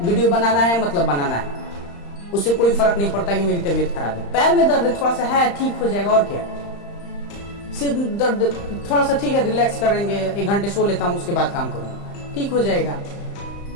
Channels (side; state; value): right; late; 35 ms